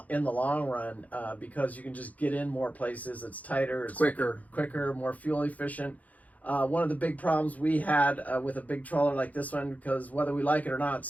long run, because you can just get in more places. It's tighter, it's quicker, more fuel efficient. One of the big problems we had with a big trawler like this one, because whether we like it or not,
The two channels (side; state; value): right; late; 0.075 ms